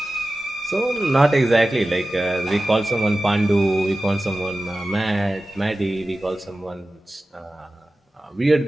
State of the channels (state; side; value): normal; both; correlation 0.95